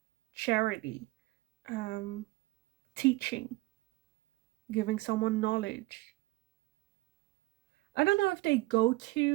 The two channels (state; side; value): quieter; left; 20.5 dB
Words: charity, um, teaching, giving someone knowledge. I don't know if they go